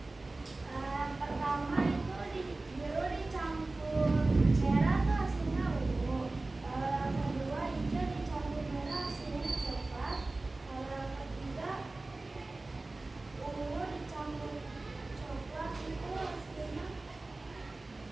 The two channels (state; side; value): quieter; left; 3.1 dB